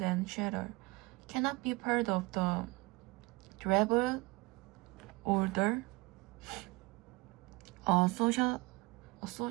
and shelter, cannot be part of the durable order. A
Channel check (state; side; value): quieter; left; 23.7 dB